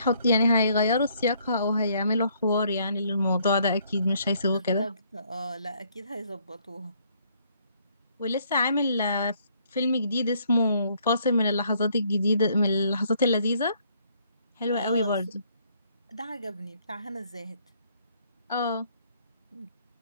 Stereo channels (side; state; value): both; inverted; correlation -0.66